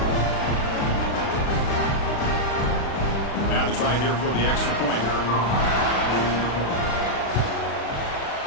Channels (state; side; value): late; right; 36 ms